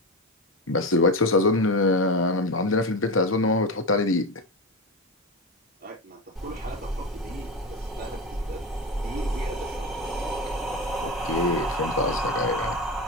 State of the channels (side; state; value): both; normal; correlation 0.20